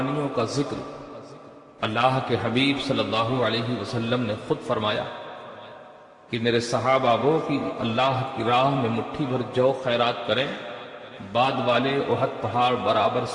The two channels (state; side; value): identical; both; correlation 1.00